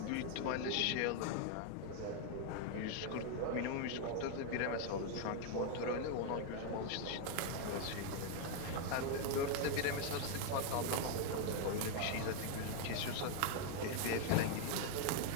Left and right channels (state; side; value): different; both; correlation 0.00